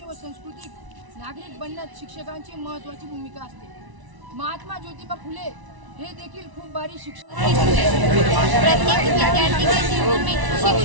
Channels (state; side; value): late; left; 1.0 ms